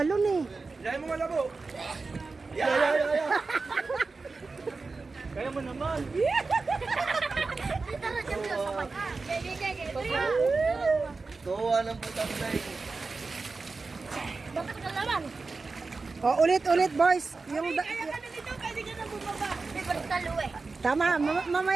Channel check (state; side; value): quieter; left; 4.0 dB